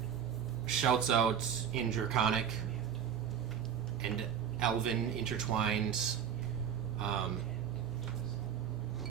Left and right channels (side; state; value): left; quieter; 8.5 dB